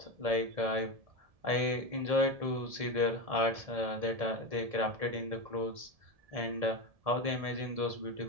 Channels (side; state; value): left; late; 1.7 ms